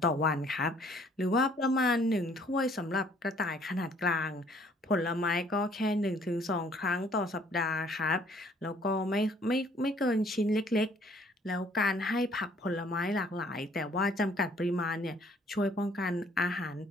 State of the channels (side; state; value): both; normal; correlation 0.60